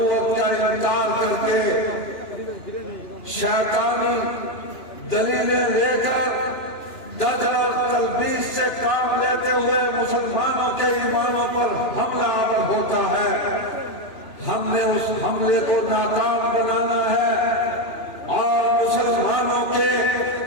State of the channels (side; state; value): right; late; 2.9 ms